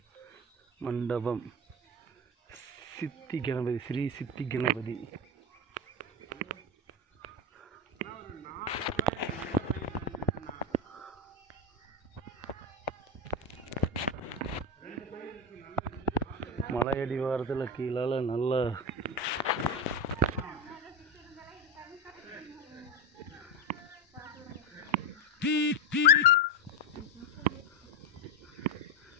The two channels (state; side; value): normal; both; correlation 0.14